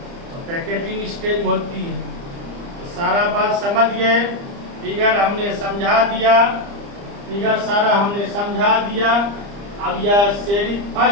तो पैकेटिंग स्टेज में होती है। तो सारा बात समझ गए। फिगर हमने समझा दिया, फिगर सारा हमने समझा दिया। अब यह सीरीज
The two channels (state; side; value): late; left; 30 ms